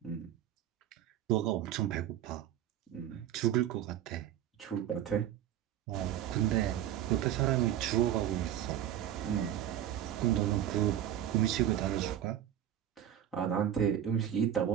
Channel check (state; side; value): quieter; left; 11.0 dB